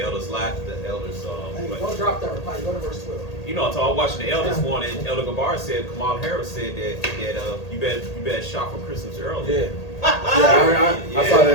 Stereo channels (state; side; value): late; right; 1.8 ms